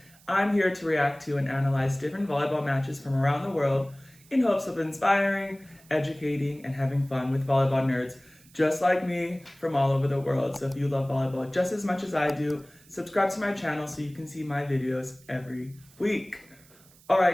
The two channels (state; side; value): noise; right; hiss, 27 dB below the sound